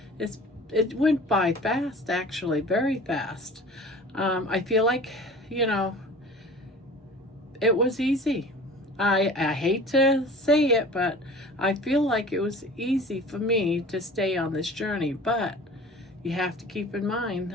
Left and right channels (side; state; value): both; normal; correlation 0.42